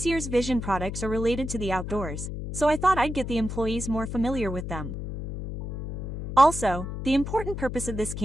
year's vision products are related to the outdoors, so I thought I'd get the employees more familiar with them. Also, the important purpose of this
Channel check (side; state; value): left; noise; hum, 6 dB below the sound